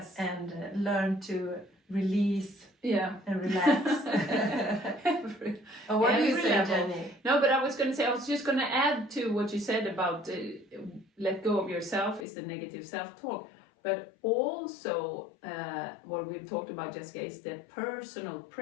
and learn to release and relax. What do you say, Jenny? No, but I was just going to add to what you said about let go of yourself is the negative self-talk, but also what we've talked about, Jessica, is the personal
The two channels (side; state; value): right; drops out; at 12.2 s